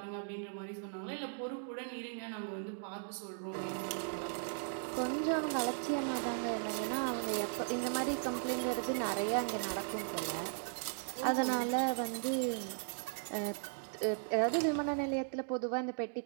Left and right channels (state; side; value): silent; left; digital silence